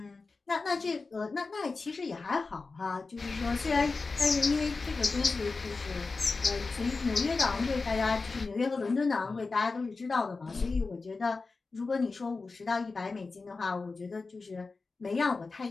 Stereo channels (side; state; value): right; quieter; 4.0 dB